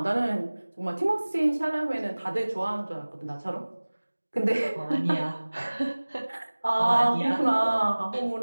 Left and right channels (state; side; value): inverted; both; correlation -1.00